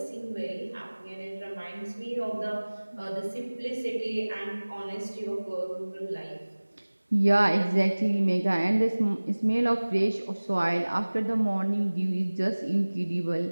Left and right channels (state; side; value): inverted; both; correlation -1.00